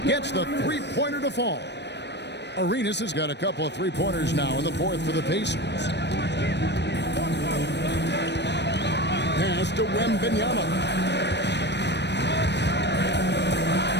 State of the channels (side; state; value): right; late; 0.50 ms